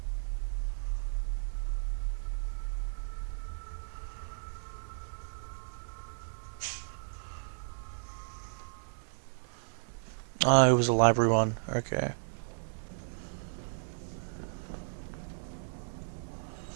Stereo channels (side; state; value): left; silent; digital silence